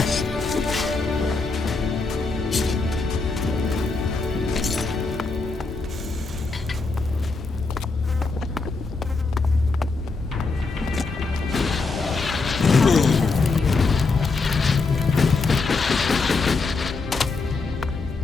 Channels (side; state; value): right; quieter; 3.9 dB